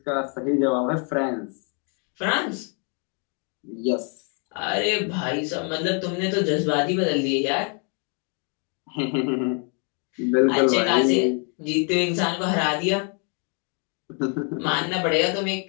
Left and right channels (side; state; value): right; quieter; 39.7 dB